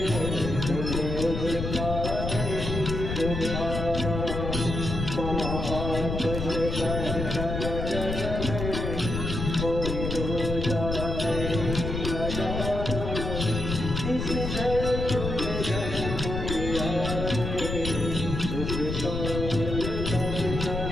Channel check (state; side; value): noise; left; rumble, 3 dB below the sound